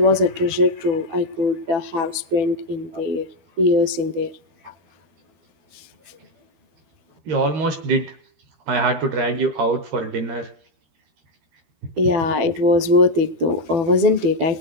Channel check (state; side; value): late; left; 12 ms